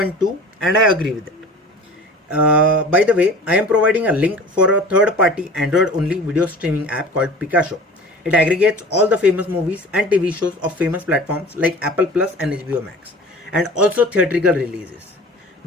and I agree with it. By the way, I am providing a link for a third-party Android-only video streaming app called Picasso. It aggregates all the famous movies and TV shows of famous platforms like Apple Plus and HBO Max, and also theatrical releases.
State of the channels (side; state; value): both; normal; correlation 0.41